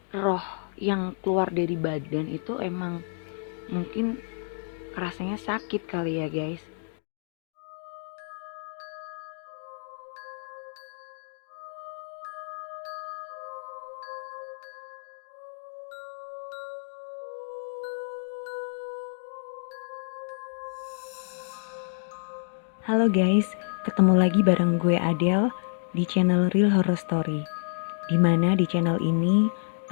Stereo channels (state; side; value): silent; right; 59 dB below the other